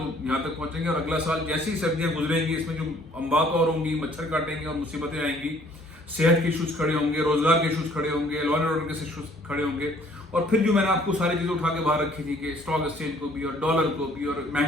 यहाँ तक पहुँचेंगे। और अगला साल जैसी सर्दियाँ गुजरेंगी, इसमें जो अम्बात और होंगी, मच्छर काटेंगे और मुसीबतें आएंगी, सेहत के इशूज़ खड़े होंगे, रोजगार के इशूज़ खड़े होंगे, लॉ एंड ऑर्डर के इशूज़ खड़े होंगे। और फिर जो मैंने आपको सारी चीज़ें उठा के बाहर रखी थी कि स्टॉक एक्सचेंज को भी, और डॉलर को भी, और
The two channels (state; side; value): normal; both; correlation 0.59